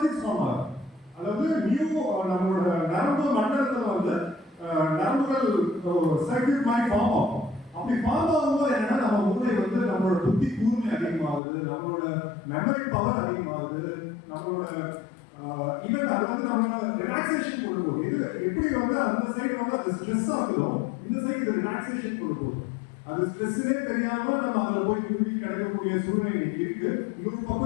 ஃபார்ம் ஆகும். அதாவது நம்மளோட நரம்பு மண்டலத்துல வந்து நரம்புகள் சர்க்யூட் மாதிரி ஃபார்ம் ஆகும். அப்படி ஃபார்ம் ஆகும்போது என்னன்னா நம்ம மூளை வந்து நம்மளோட புத்தி கூர்மை அதிகமாகுது, நம்மளோட மெமரி பவர் அதிகமாகுது, நம்மளோட ஈவன் அது வந்து நம்மளோட ரிலாக்ஸேஷன் கொடுக்கும். இது எப்படி வந்து அந்த சைடு வந்து அது ஸ்ட்ரெஸ் ஆகுதோ இந்த சைடு ரிலாக்ஸேஷன் கொடுக்கும். அது ஸ்ட்ரெஸ்ஸே தெரியாம நம்ம அதுல போய் குறுக்கி கிடைக்கக்கூடிய சூழ்நிலை இன்னைக்கு இருக்கு. இன்னொரு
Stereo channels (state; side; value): drops out; right; at 11.4 s